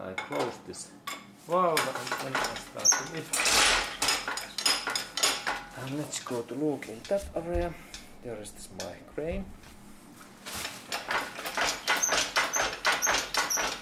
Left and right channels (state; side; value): identical; both; correlation 1.00